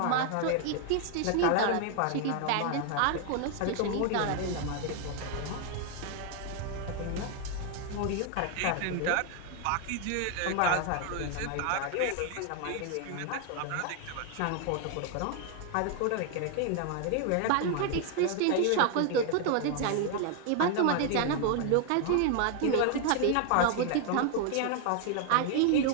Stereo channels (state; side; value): different; both; correlation 0.00